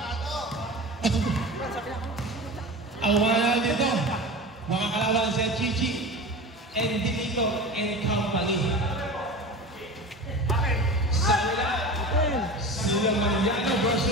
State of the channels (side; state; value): both; normal; correlation 0.31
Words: Ang mga dito, mga kalaban si Chichi and Dilito and Company. Silang Mariano